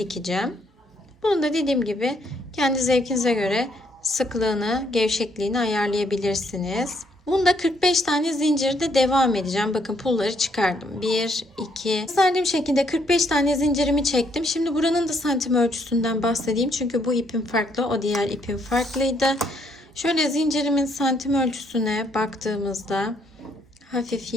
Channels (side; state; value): both; normal; correlation 0.70